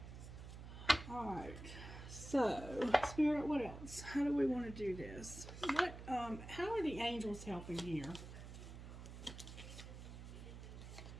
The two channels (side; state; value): right; noise; hum, 11 dB below the sound